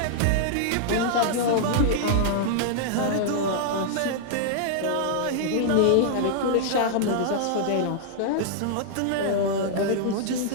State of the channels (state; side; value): different; both; correlation -0.01